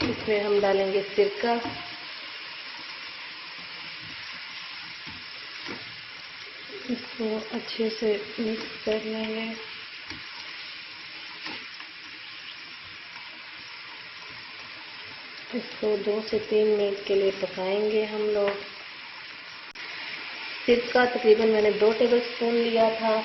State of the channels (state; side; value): identical; both; correlation 1.00